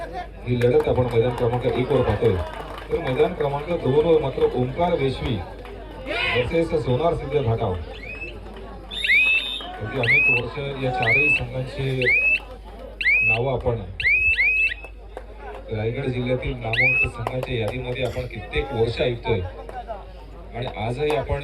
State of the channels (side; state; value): both; identical; correlation 1.00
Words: ही लढत आपण मैदान क्रमांक 1 वर पाहतोय. तर मैदान क्रमांक 2 वर मात्र ओंकार वेशवी वर्सेस सोनार सिद्ध घाटाव. अनेक वर्ष या चारही संघांची नावं आपण रायगड जिल्ह्यातील नामवंत संघाच्या यादीमध्ये आपण कित्येक वर्ष ऐकतोय. आणि आजही आपण